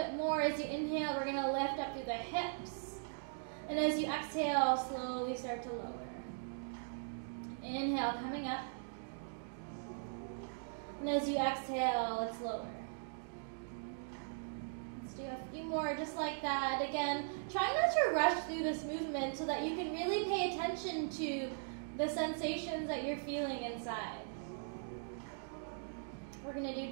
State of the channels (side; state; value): left; silent; digital silence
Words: more. As you inhale, we're going to lift up through the hips. And as you exhale, slowly start to lower. Inhale, coming up. And as you exhale, it's lower. Let's do a few more just like that. Again, try not to rush through this movement so that you can really pay attention to the sensations that you're feeling inside. We're going to do